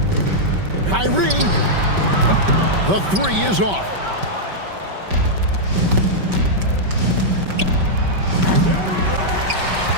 Kyrie, the three is off.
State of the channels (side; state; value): left; late; 5.2 ms